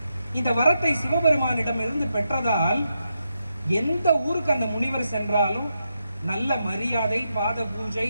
இந்த வரத்தை சிவபெருமானிடம் இருந்து பெற்றதால் எந்த ஊருக்கு அந்த முனிவர் சென்றாலும் நல்ல மரியாதை, பாத பூஜை,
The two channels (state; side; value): inverted; both; correlation -0.84